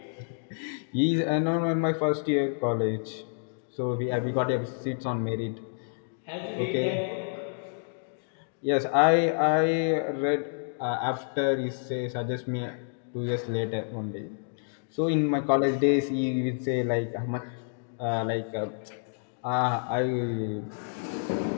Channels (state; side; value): silent; right; digital silence